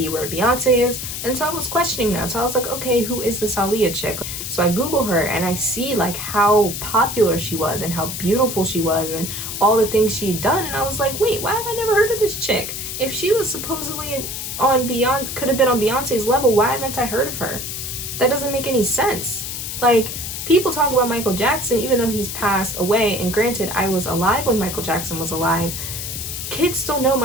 where Beyonce is. And so I was questioning that. So I was like, okay, who is this Aaliyah chick? So I Google her and I see like how popular she was and how beautiful she was and all the things she'd done. And I was like, wait, why have I never heard of this chick? If she was supposedly on could have been on Beyonce's level, why haven't I heard of her? That doesn't make any sense. Like, people talk about Michael Jackson even though he's passed away, and granted, I was alive when Michael Jackson was alive. Kids still know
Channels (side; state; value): left; noise; hiss, 6 dB below the sound